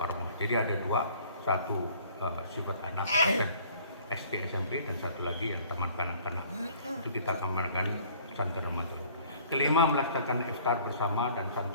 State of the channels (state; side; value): inverted; both; correlation -0.55